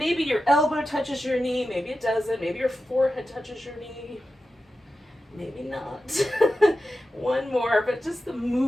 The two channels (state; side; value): normal; both; correlation 0.92